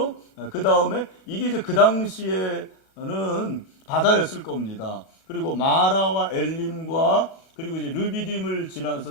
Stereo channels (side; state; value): right; late; 36 ms